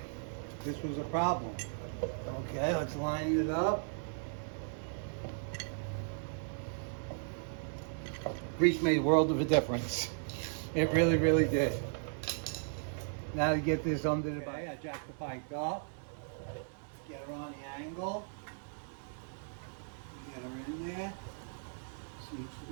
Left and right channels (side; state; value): left; silent; digital silence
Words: This was a problem. Okay, let's line it up. Grease made a world of a difference. It really, really did. Now to get this under the bike, I jack the bike up, get her on the angle, get her in there. Seems to